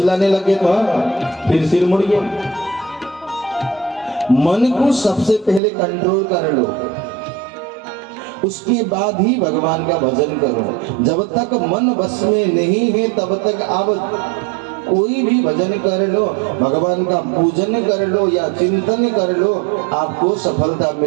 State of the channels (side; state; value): left; drops out; at 5.6 s